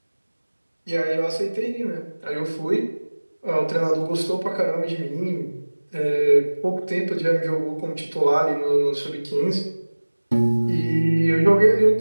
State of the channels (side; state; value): both; inverted; correlation -1.00